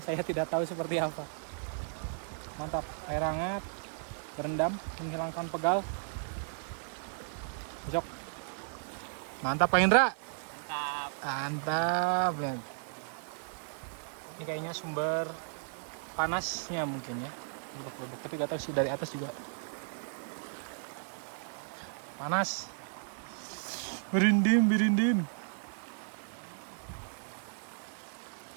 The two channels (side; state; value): left; silent; digital silence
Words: saya tidak tahu seperti apa. Mantap, air hangat, berendam, menghilangkan pegal. Besok. Mantap Pak Indra. Mantap. Ini kayaknya sumber panasnya mungkin ya. Tapi gak tahu sih dari atas juga. Panas. Berinding.